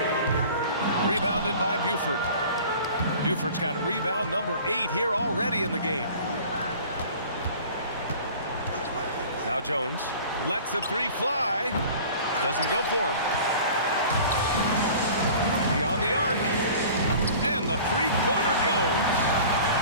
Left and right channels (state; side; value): inverted; both; correlation -0.44